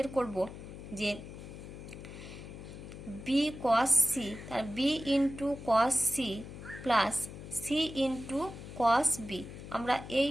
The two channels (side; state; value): left; noise; hum, 12 dB below the sound